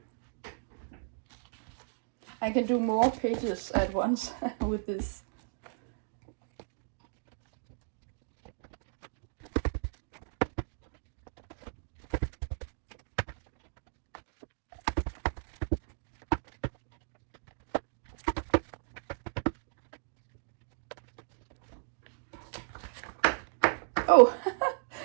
I can do more pages at once with this. Oh,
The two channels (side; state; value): left; silent; digital silence